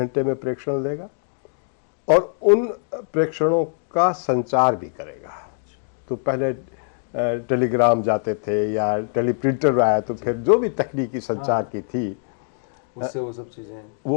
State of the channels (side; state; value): right; silent; digital silence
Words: में प्रेक्षण देगा और उन प्रेक्षणों का संचार भी करेगा। तो पहले टेलीग्राम जाते थे या टेलीप्रिंटर आया तो फिर जो भी तकनीकी संचार की थी उससे वो सब चीज़ें